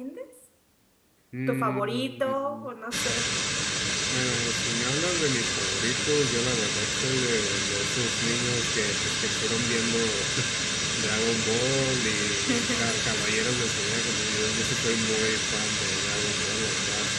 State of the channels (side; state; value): both; identical; correlation 1.00